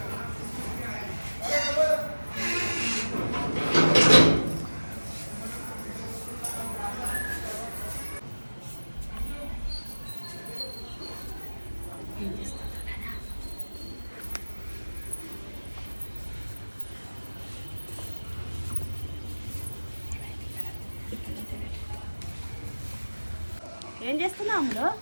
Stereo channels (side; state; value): both; inverted; correlation -1.00